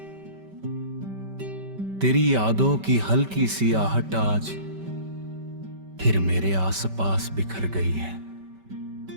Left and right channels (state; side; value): late; left; 5.2 ms